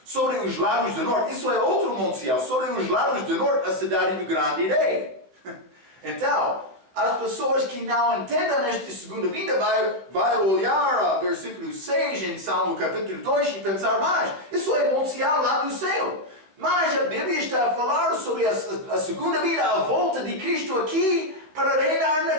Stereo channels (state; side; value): late; left; 16 ms